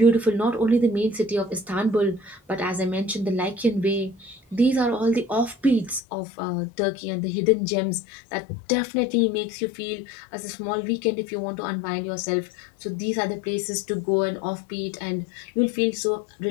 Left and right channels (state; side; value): drops out; right; at 6.0 s